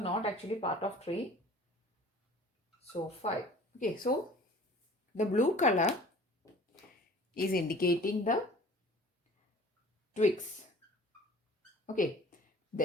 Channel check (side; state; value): both; normal; correlation 0.47